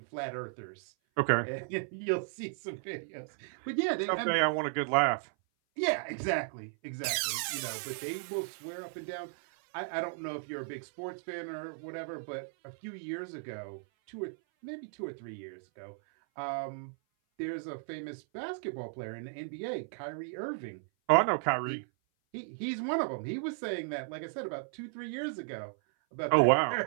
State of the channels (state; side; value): silent; left; 55 dB below the other